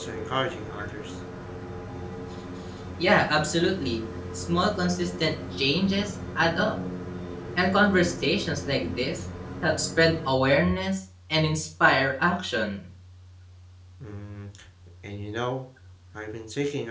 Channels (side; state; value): both; identical; correlation 1.00